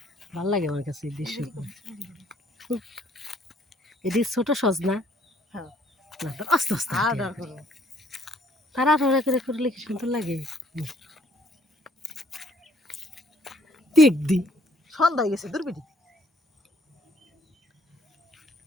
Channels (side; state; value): both; normal; correlation 0.63